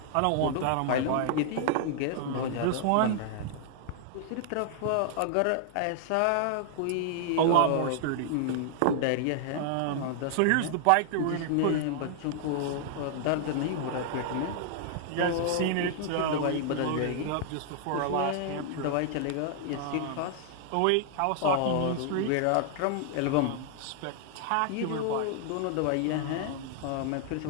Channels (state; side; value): different; both; correlation -0.01